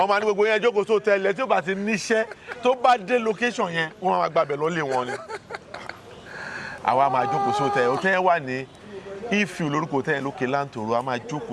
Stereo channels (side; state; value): both; identical; correlation 1.00